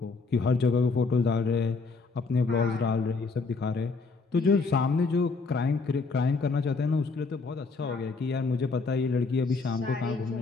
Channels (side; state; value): right; quieter; 4.2 dB